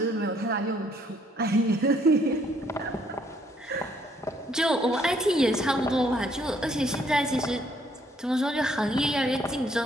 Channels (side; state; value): both; normal; correlation 0.66